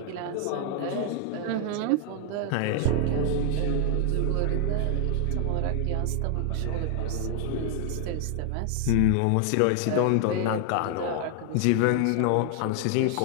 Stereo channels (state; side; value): different; both; correlation 0.00